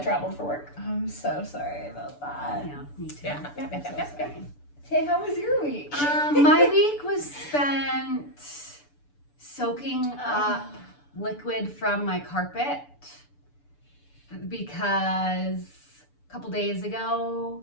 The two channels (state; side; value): late; right; 6.9 ms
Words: traveled for work. I'm so sorry about that. Yeah, me too. Yeah. I'm so sorry. Hey, how was your week? My week was spent soaking up liquid from my carpet because a couple days ago,